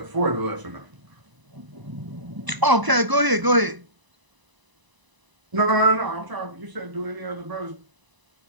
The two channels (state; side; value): late; left; 1.0 ms